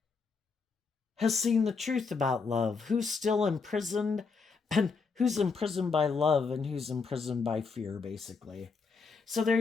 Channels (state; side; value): quieter; right; 4.8 dB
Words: has seen the truth about love, who's still imprisoned, and who's imprisoned by love and who's imprisoned by fear, basically. So there